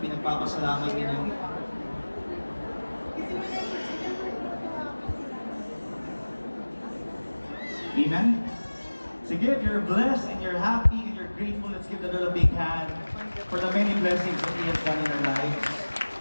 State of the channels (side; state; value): both; inverted; correlation -1.00